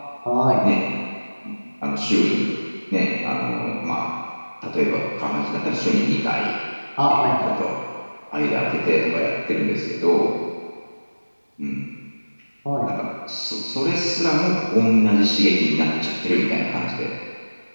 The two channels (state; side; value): inverted; both; correlation -1.00